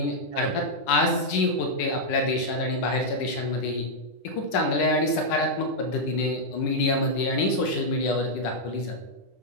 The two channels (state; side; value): late; right; 10 ms